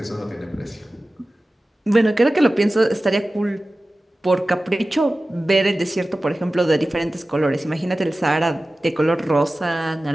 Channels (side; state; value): both; normal; correlation 0.96